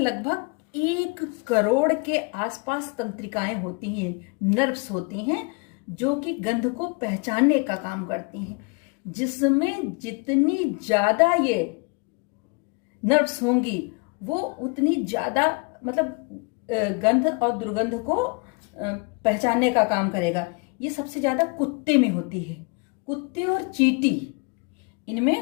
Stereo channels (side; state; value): right; quieter; 32.5 dB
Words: 1 करोड़ के आसपास तंत्रिकाएं होती हैं, नर्व्स होती हैं जो कि गंध को पहचानने का काम करती हैं, जिसमें जितनी ज्यादा ये नर्व्स होंगी वो उतनी ज्यादा मतलब गंध और दुर्गंध को पहचानने का काम करेगा। ये सबसे ज्यादा कुत्ते में होती है। कुत्ते और चींटी,